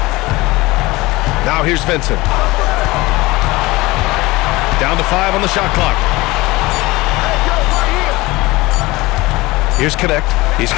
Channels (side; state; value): right; quieter; 21.0 dB